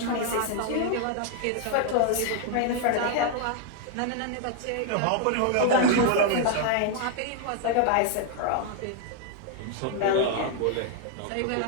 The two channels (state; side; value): different; both; correlation 0.00